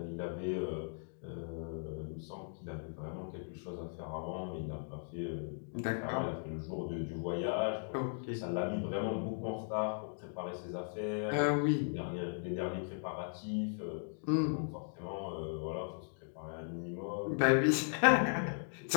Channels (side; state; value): right; silent; digital silence